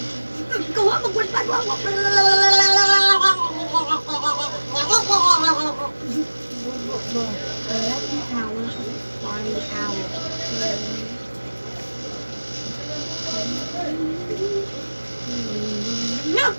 Wa magwalpad wa. No.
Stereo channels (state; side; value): inverted; both; correlation -1.00